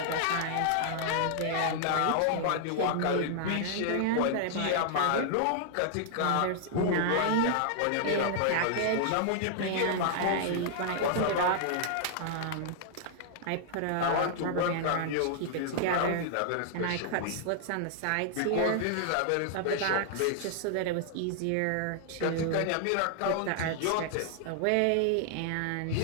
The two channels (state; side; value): different; both; correlation -0.01